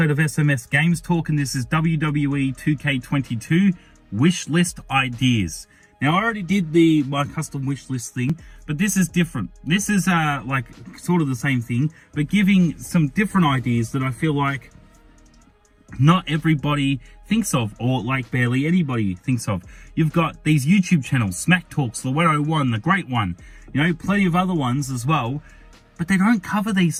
of SMS Games Talk, and this is WWE 2K22 wish list ideas. Now, I already did my custom wish list thing, but this is different. This is like sort of the same thing, but giving some different ideas that I feel like not everybody thinks of, or like barely anybody thinks of. You've got these YouTube channels, Smack Talks, the 101, the Great One, you know, plenty of other ones as well, but they don't cover these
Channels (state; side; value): identical; both; correlation 1.00